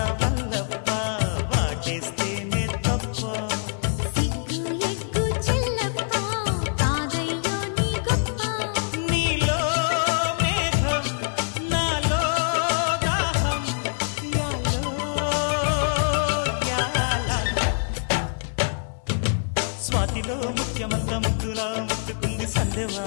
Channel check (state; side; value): silent; right; 62 dB below the other